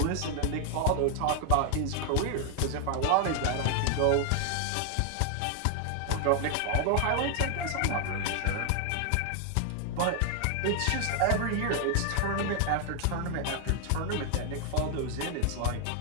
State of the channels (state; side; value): different; both; correlation 0.00